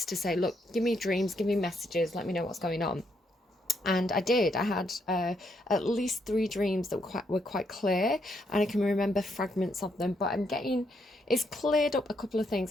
to say, look, give me dreams, give me messages, let me know what's going on. And I did. I had at least 3 dreams that were quite clear, and I can remember fragments of them. But it's cleared up a couple of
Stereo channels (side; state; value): both; normal; correlation 0.76